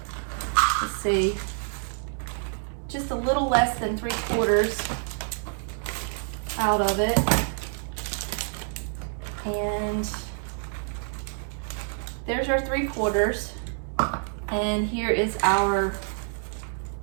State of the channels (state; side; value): silent; left; 60 dB below the other